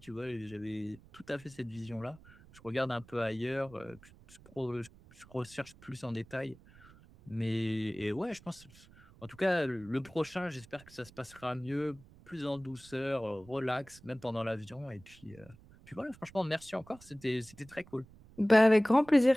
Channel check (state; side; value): noise; right; rumble, 23 dB below the sound